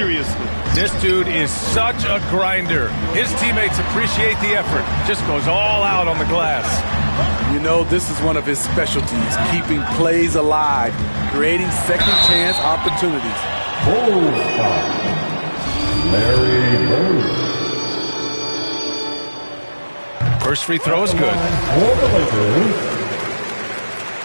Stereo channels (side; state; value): both; inverted; correlation -1.00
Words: This dude is such a grinder. His teammates appreciate the effort. Just goes all out on the glass. You know, this is one of his specialties, keeping plays alive, creating second chance opportunities. Bulls foul. Larry Bird. First free throw is good. For the Lakers,